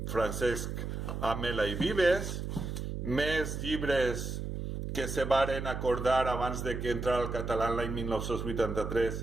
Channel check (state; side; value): noise; right; hum, 4 dB below the sound